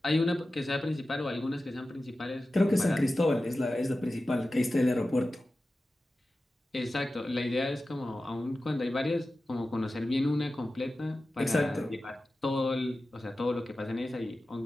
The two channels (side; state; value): both; normal; correlation 0.94